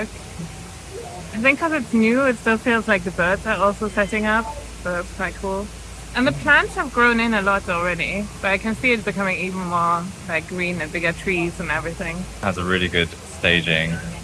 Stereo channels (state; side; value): identical; both; correlation 1.00